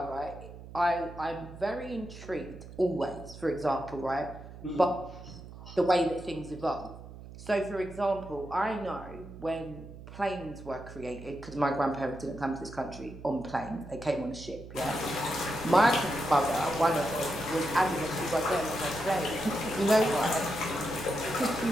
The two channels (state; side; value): noise; right; hum, 15 dB below the sound